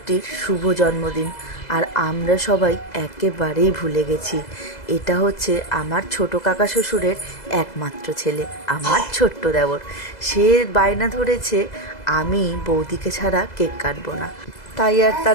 শুভ জন্মদিন, আর আমরা সবাই একেবারেই ভুলে গেছি। এটা হচ্ছে আমার ছোট কাকা শ্বশুরের একমাত্র ছেলে, আমার ছোট্ট দেওর। সে বায়না ধরেছে আমি বৌদিকে ছাড়া কেক কাটবো না। তাই আর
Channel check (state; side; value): late; right; 2.0 ms